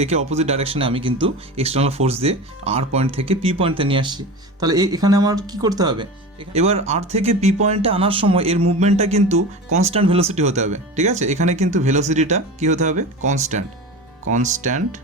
একে অপোজিট ডাইরেকশনে আমি কিন্তু এক্সটার্নাল ফোর্স দিয়ে আর পয়েন্ট থেকে পি পয়েন্টে নিয়ে আসছি। তাহলে এখানে আমার কি করতে হবে? এবার আর থেকে পি পয়েন্টে আনার সময় এর মুভমেন্টটা কিন্তু কনস্ট্যান্ট ভেলোসিটি হতে হবে, ঠিক আছে? এখানে কিন্তু ভেলোসিটিটা কি হতে হবে? কনস্ট্যান্ট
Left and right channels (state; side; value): normal; both; correlation 0.30